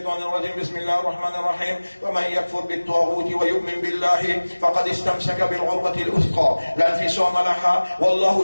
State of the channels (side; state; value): both; inverted; correlation -1.00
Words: الرجيم بسم الله الرحمن الرحيم ومن يكفر بالطاغوت ويؤمن بالله فقد استمسك بالعروة الوثقى لا انفصام لها والله